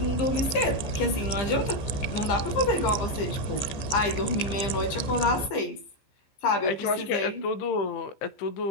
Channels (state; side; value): late; right; 15 ms